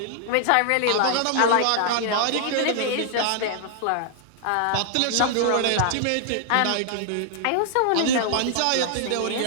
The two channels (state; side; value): different; both; correlation 0.00